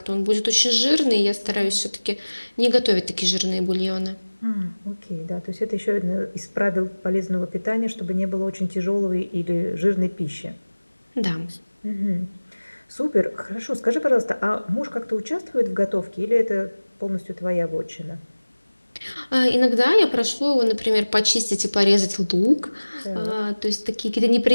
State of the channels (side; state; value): both; inverted; correlation -1.00